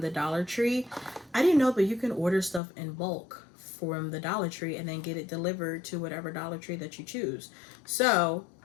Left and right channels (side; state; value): right; drops out; at 2.6 s